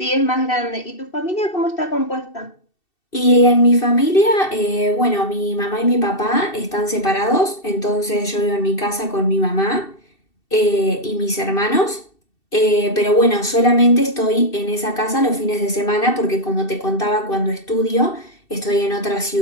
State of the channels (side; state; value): right; late; 2.7 ms